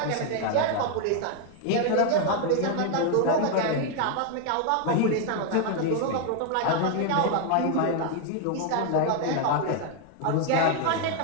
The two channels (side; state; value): both; different; correlation 0.00